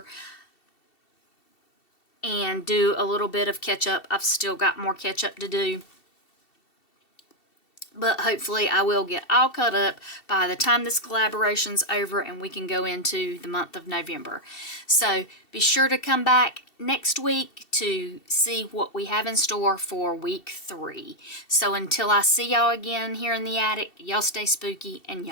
and do a little bit of catch up. I've still got more catch up to do. But hopefully I will get all caught up by the time this collaboration's over and we can go into the month of November. So be sure to come back next week to see what we have in store for week 3. So until I see y'all again here in the attic, y'all stay spooky and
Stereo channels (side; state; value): right; late; 2.7 ms